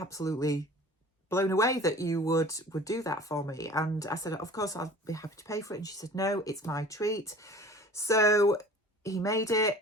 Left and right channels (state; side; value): normal; both; correlation 0.44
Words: blown away that you would do that for me. And I said, of course, I'll be happy to pay for it. And she said, no, it's my treat. So he made